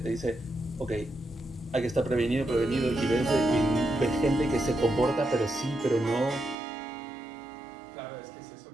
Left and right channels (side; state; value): left; drops out; at 6.6 s